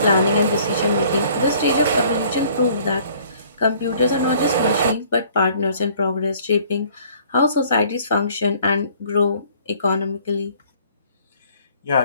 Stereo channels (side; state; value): both; inverted; correlation -0.57